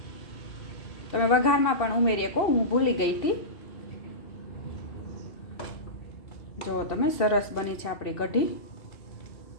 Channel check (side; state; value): right; late; 2.7 ms